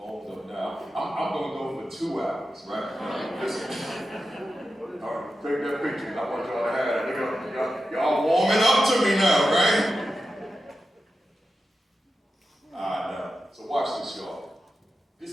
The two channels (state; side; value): normal; both; correlation 0.91